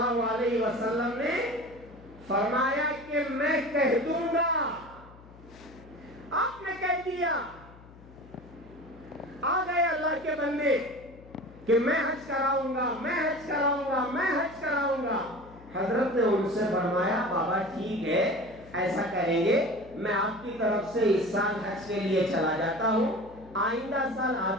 علیہ وسلم نے فرمایا کہ میں کہہ دوں گا۔ آپ نے کہہ دیا، آ گئے اللہ کے بندے کہ میں حج کراؤں گا، میں حج کراؤں گا، میں حج کراؤں گا۔ حضرت نے ان سے فرمایا، بابا ٹھیک ہے، ایسا کریں گے، میں آپ کی طرف سے اس سال حج کے لیے چلا جاتا ہوں، آئندہ سال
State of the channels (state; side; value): noise; left; hum, 21 dB below the sound